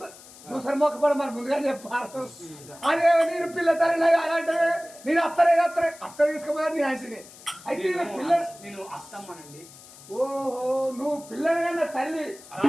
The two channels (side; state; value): left; noise; hiss, 20 dB below the sound